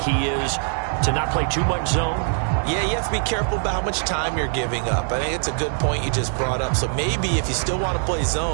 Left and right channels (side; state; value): left; silent; 62 dB below the other